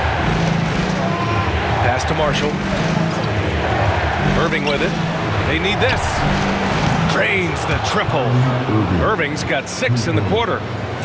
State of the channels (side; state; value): both; identical; correlation 1.00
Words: Pass to Marshall. Irving with it. They need this. Drains the triple. Irving's got 6 in the quarter.